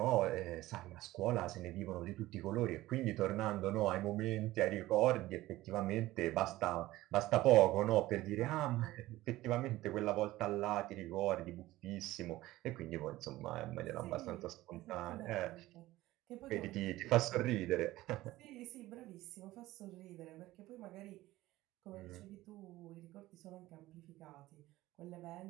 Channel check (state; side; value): quieter; left; 17.0 dB